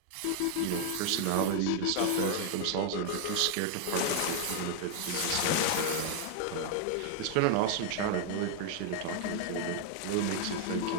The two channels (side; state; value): both; different; correlation 0.00